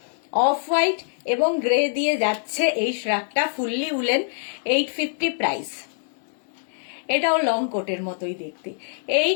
অফ হোয়াইট এবং গ্রে দিয়ে যাচ্ছে এই শ্রাগটা, ফুললি উলেন, 850 প্রাইস। এটাও লং কোটের মতোই দেখতে।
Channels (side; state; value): right; silent; 62 dB below the other